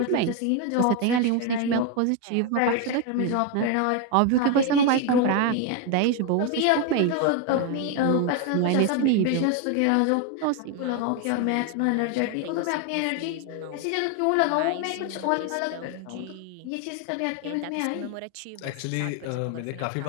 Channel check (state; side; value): different; both; correlation 0.02